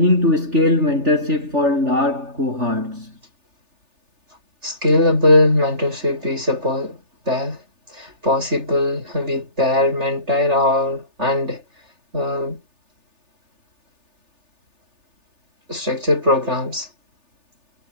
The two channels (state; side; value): late; left; 3.4 ms